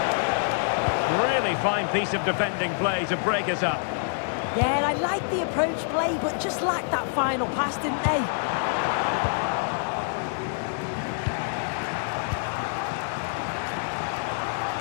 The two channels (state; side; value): silent; right; digital silence